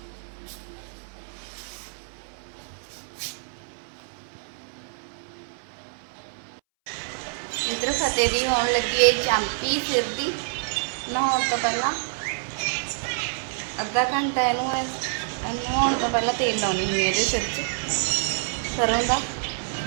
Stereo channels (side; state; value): left; silent; 60 dB below the other